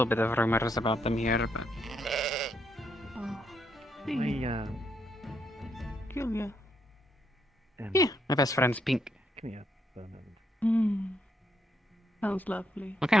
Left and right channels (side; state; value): both; normal; correlation 0.76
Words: bit of rumors about them here, but Julia. yeah, my best friend's Pink. Come here for a moment. Sounds lovely. What